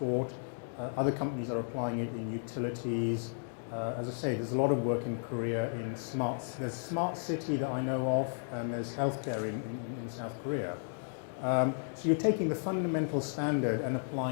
Other companies are applying it in utilities. As I say, there's a lot of work in Korea in there's smart city that I know of, and there's healthcare in South Korea. So you're taking the fundamental standard and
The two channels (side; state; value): right; silent; digital silence